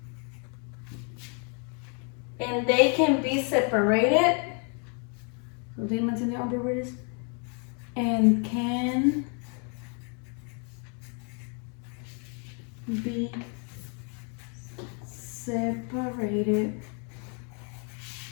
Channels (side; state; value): right; quieter; 38.9 dB